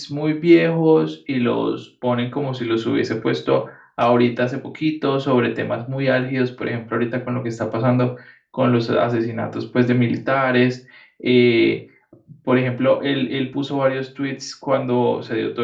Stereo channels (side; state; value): both; identical; correlation 1.00